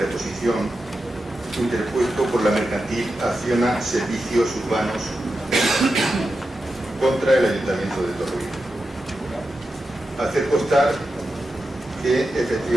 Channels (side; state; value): both; normal; correlation 0.90